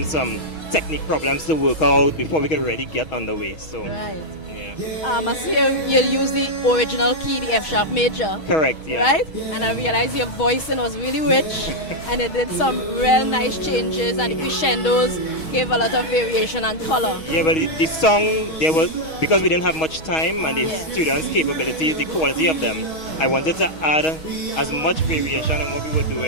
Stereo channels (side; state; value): right; late; 6.3 ms